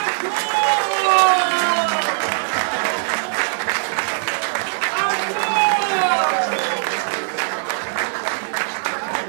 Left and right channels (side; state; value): left; silent; digital silence